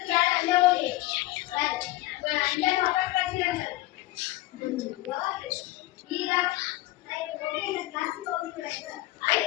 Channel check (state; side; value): quieter; right; 18.0 dB